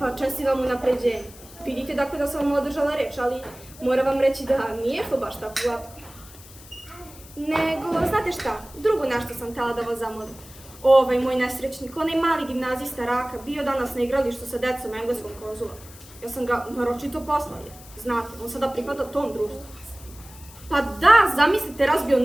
pa, čestitam unapređenje. Vidite dakle da sam vam održala reč, ali moram vam reći da nije to baš tako glatko. Nego, znate šta, drugo nešto sam htjela da vas zamolim. Ovaj moj nesrećnik, onaj mali gimnazista Raka, bio danas na igralištu sa decom engleskog konzula. Ja sam ga naročito poslala, znate, on sada pripada tom društvu. Pa da, zamislite, razbio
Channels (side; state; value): left; noise; hiss, 20 dB below the sound